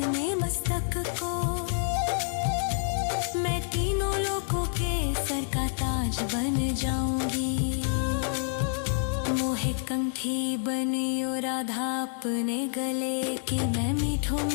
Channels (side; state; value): right; silent; 59 dB below the other